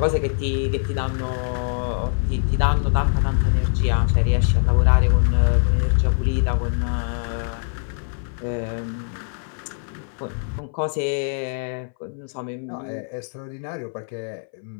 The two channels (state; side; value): silent; right; 60 dB below the other